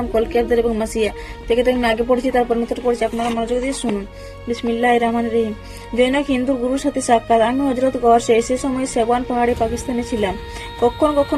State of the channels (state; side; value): identical; both; correlation 1.00